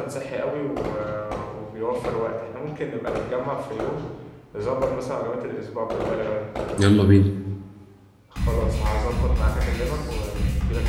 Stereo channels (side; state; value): both; identical; correlation 1.00